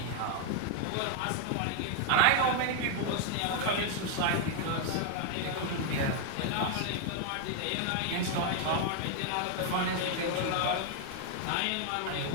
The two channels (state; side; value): different; both; correlation 0.00